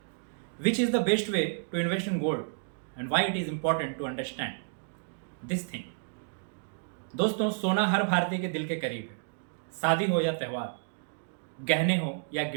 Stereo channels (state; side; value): silent; left; digital silence